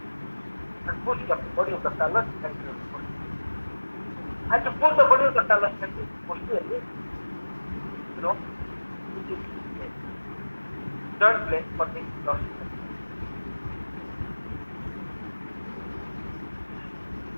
and push the body of the talus and your body. And to pull the body of the talus and posteriorly, which is joint plane for the dorsal.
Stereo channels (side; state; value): both; inverted; correlation -1.00